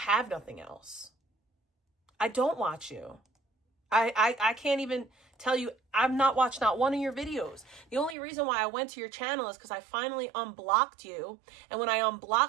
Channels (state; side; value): drops out; left; at 8.2 s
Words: nothing else. I don't watch you. I can't even tell you, I've not watched not one of your videos. The only reason why I went to your channel is because I finally unblocked you. And when I